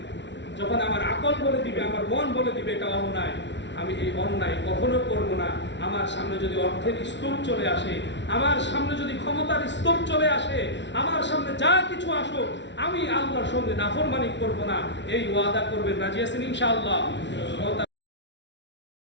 যখন আমার আকল বলে দিবে, আমার মন বলে দিবে এটা অন্যায়, আমি এই অন্যায় কখনো করব না। আমার সামনে যদি অর্থের স্তূপ চলে আসে, আমার সামনে যদি ক্ষমতার স্তূপ চলে আসে, আমার সামনে যা কিছু আসুক, আমি আল্লাহর সঙ্গে নাফরমানি করব না। এই ওয়াদা করবেন, রাজি আছেন ইনশাআল্লাহ?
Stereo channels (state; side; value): late; right; 0.52 ms